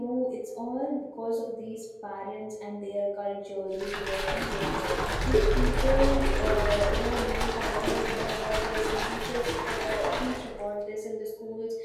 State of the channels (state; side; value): identical; both; correlation 1.00